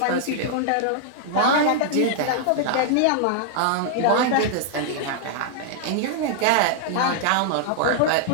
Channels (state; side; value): different; both; correlation -0.01